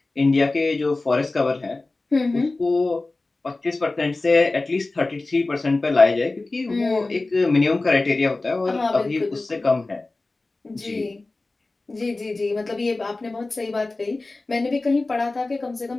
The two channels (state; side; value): quieter; right; 3.2 dB